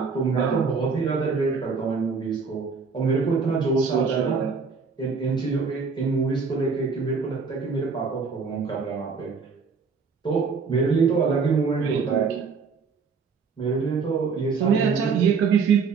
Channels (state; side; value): quieter; left; 5.2 dB